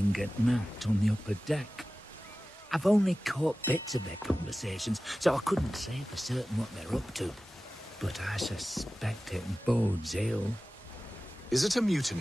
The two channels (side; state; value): both; normal; correlation 0.96